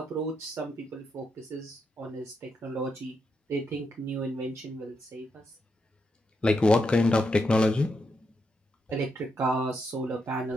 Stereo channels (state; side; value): normal; both; correlation 0.82